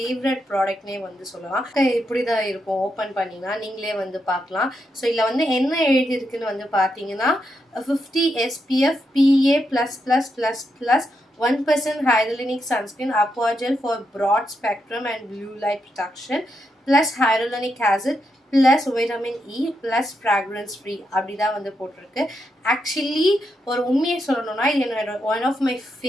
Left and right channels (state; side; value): normal; both; correlation 0.83